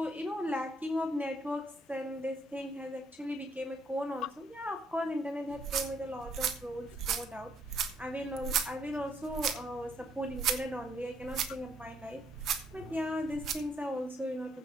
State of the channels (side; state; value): both; normal; correlation 0.71